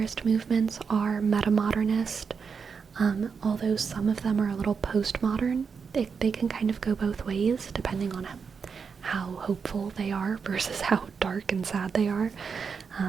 movements are metamodernist, although some of them are a little postmodern. They can kind of go both ways, depending on how hopeful they are versus how dark and sad they are.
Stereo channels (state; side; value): quieter; left; 5.8 dB